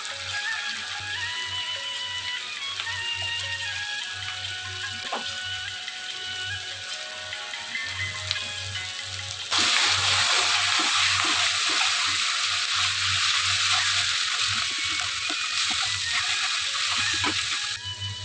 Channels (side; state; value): both; identical; correlation 1.00